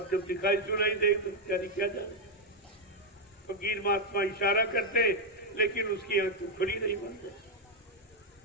जब दिखाई सुनाई दे तो बेचारी क्या जाने। फकीर महात्मा इशारा करते लेकिन उसकी आंखें खुली नहीं बनते।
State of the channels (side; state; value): both; normal; correlation 0.02